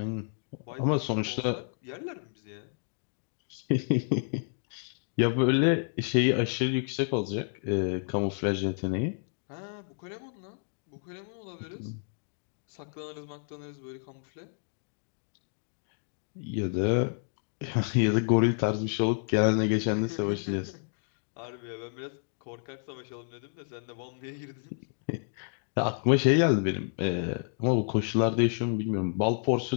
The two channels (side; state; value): right; silent; 58 dB below the other